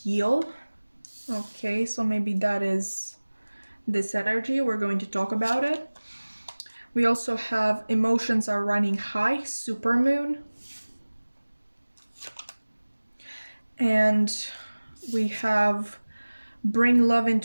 heal. Okay, so maybe that is this energy. We're going to talk about it. We also have emotions are running high, supermoon. And we have bring love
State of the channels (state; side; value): inverted; both; correlation -1.00